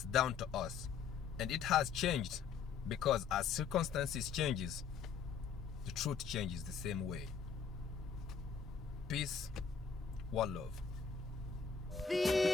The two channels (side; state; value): right; quieter; 6.4 dB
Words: down to us, and it has changed, because as circumstances changes, the truth changes the same way. Peace, one love.